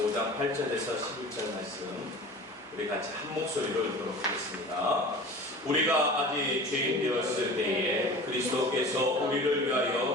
5장 8절에서 11절 말씀 우리 같이 한 목소리로 읽도록 하겠습니다. 우리가 아직 죄인 되었을 때에 그리스도께서 우리를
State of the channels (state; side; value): normal; both; correlation 0.38